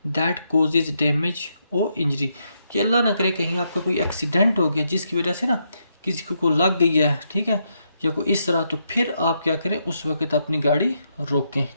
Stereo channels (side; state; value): both; inverted; correlation -0.79